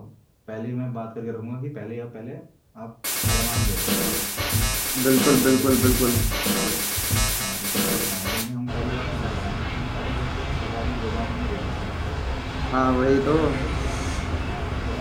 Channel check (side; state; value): both; identical; correlation 1.00